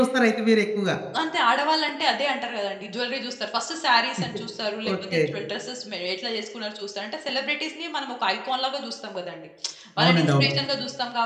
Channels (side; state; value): both; identical; correlation 1.00